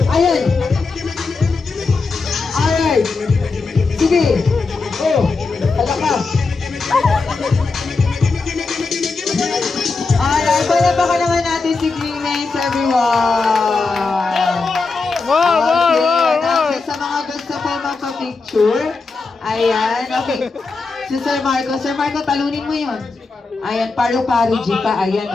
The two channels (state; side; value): quieter; right; 4.1 dB